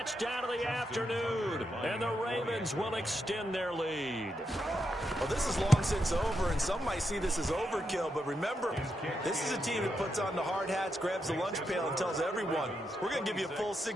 of the afternoon. And the Ravens will extend their lead. Well, this is long since over, and some might see this as overkill. But remember, this is a team that puts on the hard hats, grabs the lunch pail, and tells everyone, we're going to give you a full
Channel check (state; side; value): normal; both; correlation 0.84